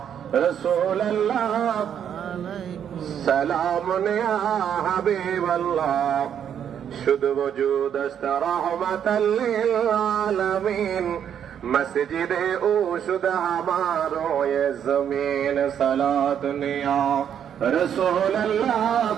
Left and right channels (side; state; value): left; quieter; 8.9 dB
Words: रसूल अल्लाह सलाम या हबीब अल्लाह। शुद्ध वजूद अस्त रहमतल लिल आलमीन, मस्जिद ओ शुद्ध हमारो ये जमीन। सलात या रसूल अल्लाह